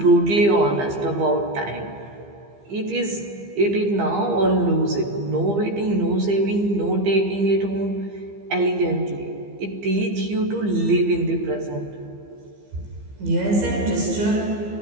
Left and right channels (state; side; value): late; left; 15 ms